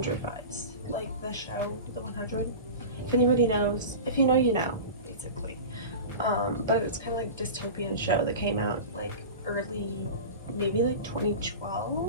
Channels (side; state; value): both; inverted; correlation -0.31